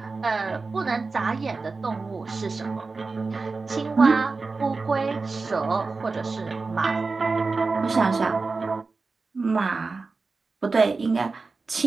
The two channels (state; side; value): quieter; left; 4.0 dB